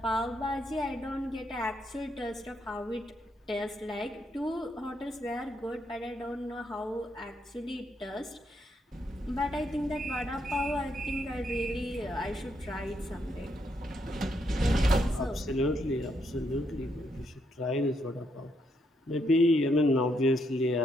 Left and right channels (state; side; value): normal; both; correlation 0.77